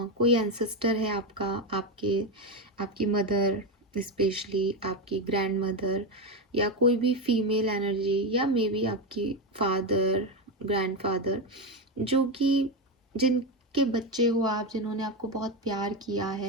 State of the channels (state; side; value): normal; both; correlation 0.12